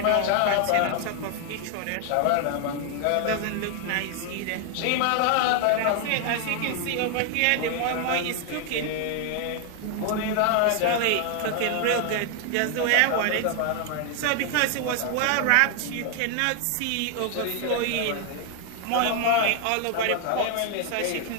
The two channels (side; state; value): both; different; correlation 0.00